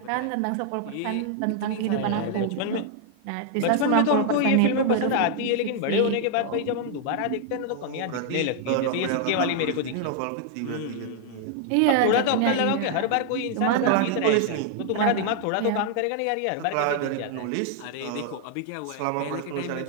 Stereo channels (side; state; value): both; different; correlation 0.00